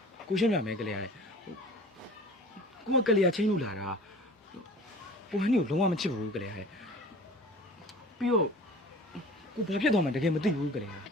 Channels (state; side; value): normal; both; correlation 0.42